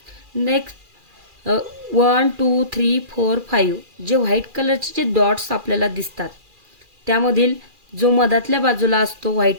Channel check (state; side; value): late; left; 2.4 ms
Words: नेक्स्ट 1 2 3 4 5 जे व्हाईट कलरचे जे डॉट्स आपल्याला दिसतात त्यामधील जो मधातल्या बाजूला असतो व्हाईट